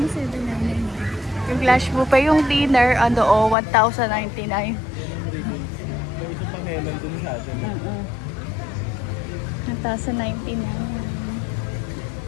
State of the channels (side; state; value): right; drops out; at 3.6 s